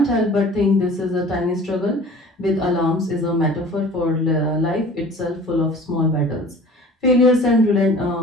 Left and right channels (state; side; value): normal; both; correlation 0.45